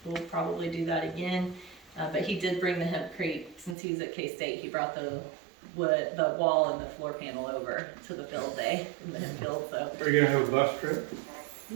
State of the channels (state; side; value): drops out; left; at 3.8 s